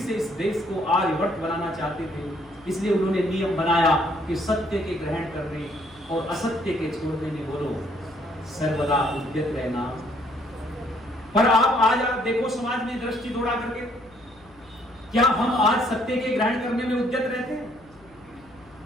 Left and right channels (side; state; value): left; noise; hum, 28 dB below the sound